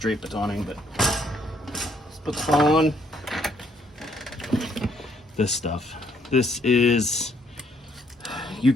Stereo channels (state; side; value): normal; both; correlation 0.68